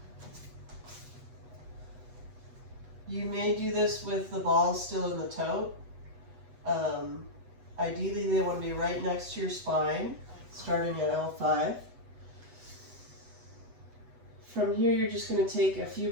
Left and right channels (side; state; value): left; late; 7.9 ms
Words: You may do this with the balls still in the tote. Ideally, they want to be right next to your spine, starting at L5. From here, you're just going to take a few